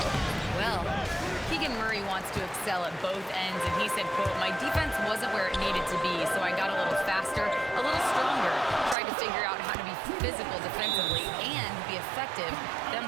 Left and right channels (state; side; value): drops out; left; at 9.0 s